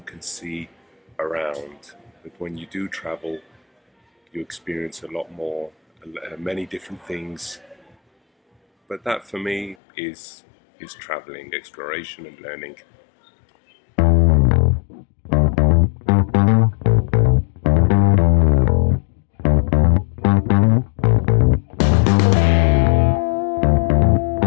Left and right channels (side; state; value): right; drops out; at 9.8 s